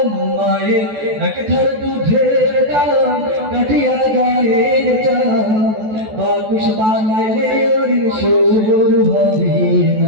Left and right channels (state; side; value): late; left; 14 ms